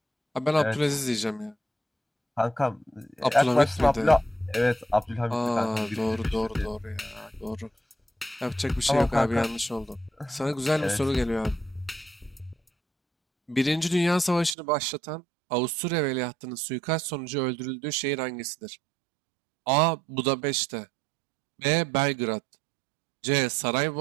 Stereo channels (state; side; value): drops out; left; at 14.6 s